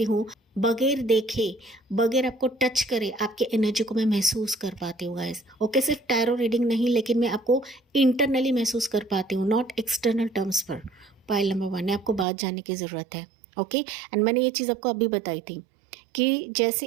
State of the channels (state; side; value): drops out; left; at 12.2 s